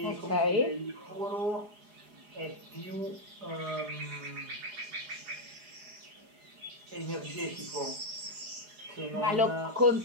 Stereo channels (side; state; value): left; late; 4.8 ms